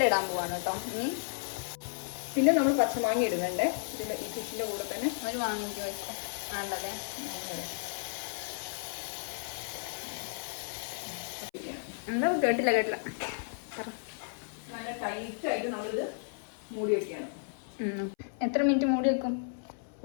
ഇടാൻ പോവാണ് കേട്ടോ. ഇനി പിന്നെ നമ്മൾ പച്ചമാങ്ങ ഇടുന്നുണ്ട് ഇതിന്റെ ഈ ഫിഷിന്റെ കൂടെ തന്നെ. ഒരു മാങ്ങ വെച്ചോ. വേണ്ടല്ലേ? എന്താ കേട്ടില്ല നല്ല ടൈറ്റ് ആയിട്ട് നമ്മളിത് മൂടി വെക്കുകയാണ്. എത്ര മിനിറ്റ് മൂടി വെക്കും?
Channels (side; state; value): right; silent; 56 dB below the other